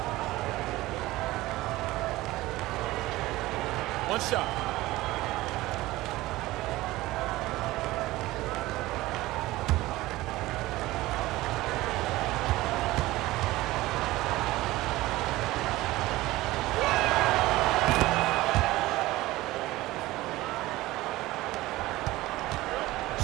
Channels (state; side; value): quieter; left; 18.1 dB